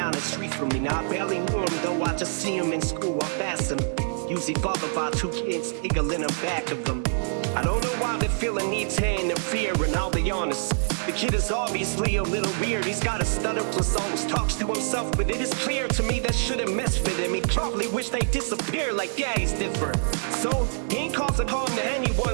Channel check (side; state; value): left; silent; digital silence